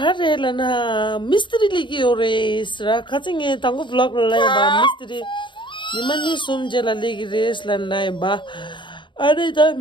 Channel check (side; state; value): right; late; 0.23 ms